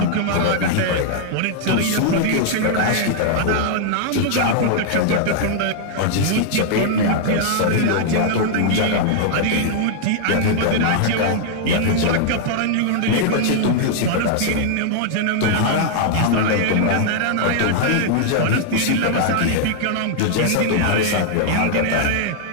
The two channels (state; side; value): different; both; correlation -0.01